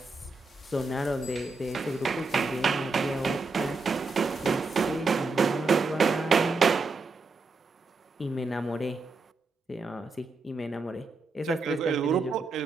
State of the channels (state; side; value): quieter; left; 3.8 dB